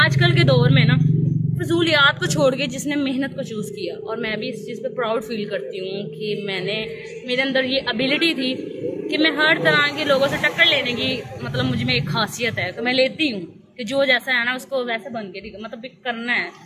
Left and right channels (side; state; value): both; identical; correlation 1.00